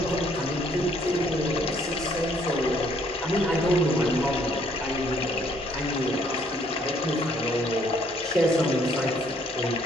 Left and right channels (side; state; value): both; normal; correlation 0.65